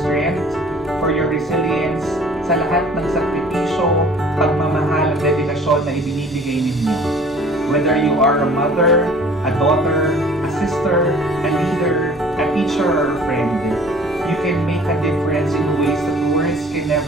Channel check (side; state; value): both; normal; correlation 0.50